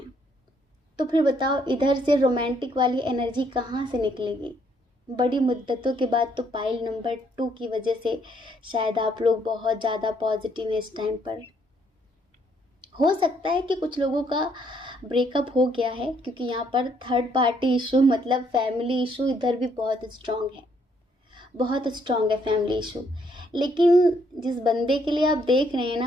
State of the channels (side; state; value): both; normal; correlation 0.69